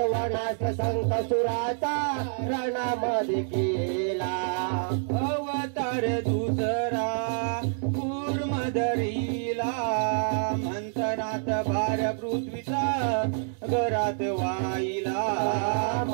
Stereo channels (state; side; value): silent; left; digital silence